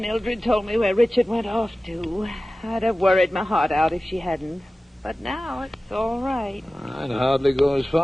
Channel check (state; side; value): normal; both; correlation 0.96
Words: told me where Richard went off to. I'd have worried my heart out if she hadn't. But now it's all right. I'd hardly go as